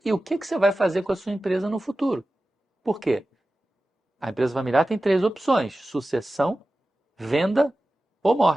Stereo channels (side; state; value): both; normal; correlation 0.95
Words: e o que você vai fazer com a sua empresa no futuro. Por quê? A empresa familiar tem 3 opções: sucessão, venda ou